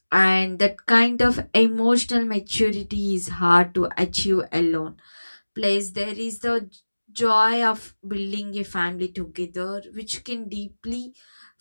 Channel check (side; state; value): both; inverted; correlation -1.00